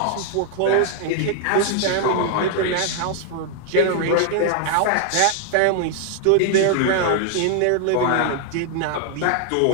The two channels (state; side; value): different; both; correlation 0.00